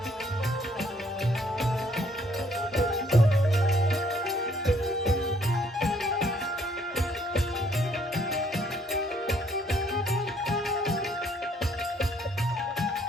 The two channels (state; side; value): normal; both; correlation 0.64